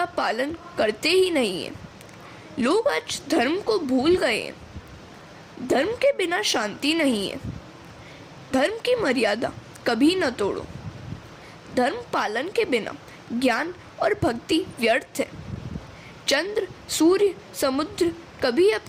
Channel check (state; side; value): identical; both; correlation 1.00